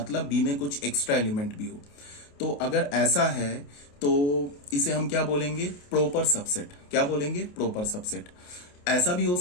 बी में कुछ एक्स्ट्रा एलिमेंट भी हो, तो अगर ऐसा है तो इसे हम क्या बोलेंगे, प्रॉपर सबसेट। क्या बोलेंगे, प्रॉपर सबसेट। ऐसा भी हो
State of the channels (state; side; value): late; right; 28 ms